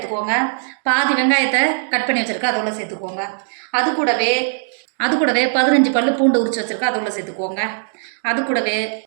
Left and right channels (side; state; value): left; silent; digital silence